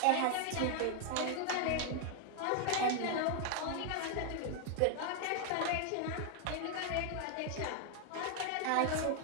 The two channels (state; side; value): different; both; correlation 0.00